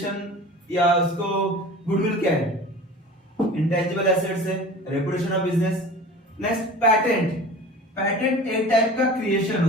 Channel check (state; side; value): normal; both; correlation 0.39